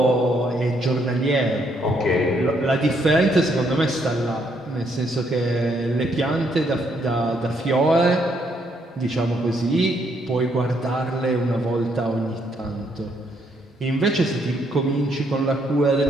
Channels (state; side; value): normal; both; correlation 0.72